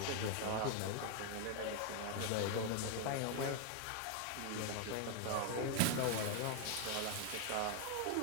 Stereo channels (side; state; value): both; different; correlation 0.01